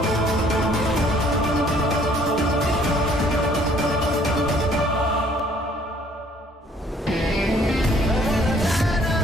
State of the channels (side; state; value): both; normal; correlation 0.60